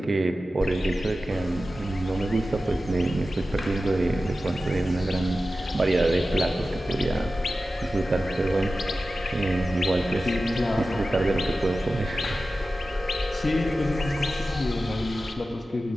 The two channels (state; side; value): normal; both; correlation 0.94